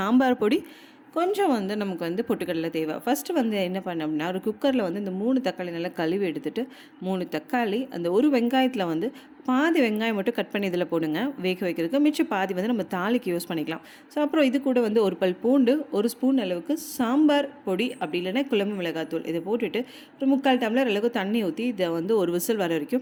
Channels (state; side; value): identical; both; correlation 1.00